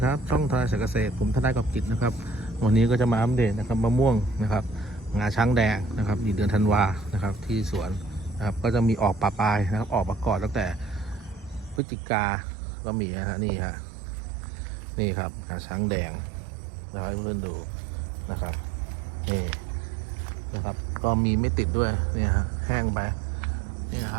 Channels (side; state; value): left; drops out; at 11.8 s